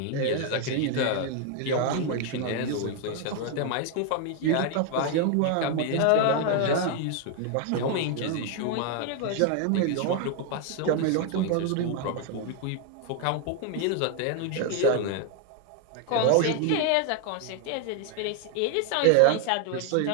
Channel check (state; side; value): different; both; correlation 0.01